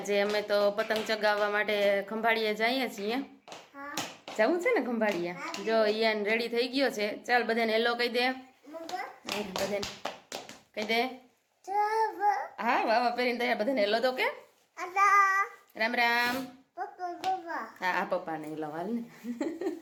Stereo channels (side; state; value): both; identical; correlation 1.00